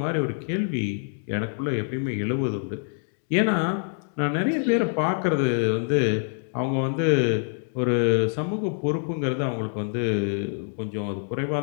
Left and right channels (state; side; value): silent; right; 61 dB below the other